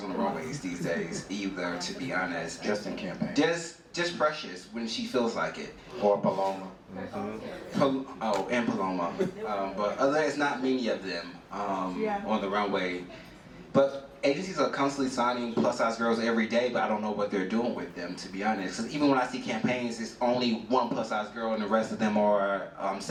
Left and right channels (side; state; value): both; identical; correlation 1.00